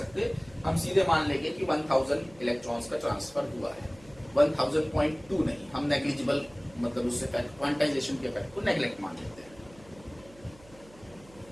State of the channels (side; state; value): right; noise; hum, 24 dB below the sound